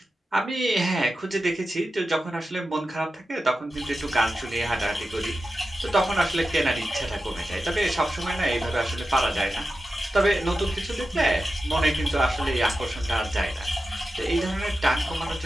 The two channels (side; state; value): both; normal; correlation 0.92